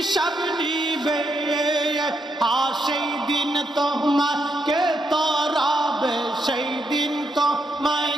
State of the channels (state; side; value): normal; both; correlation 0.79